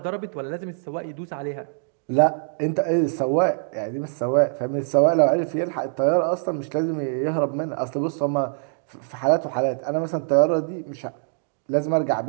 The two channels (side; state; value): left; silent; digital silence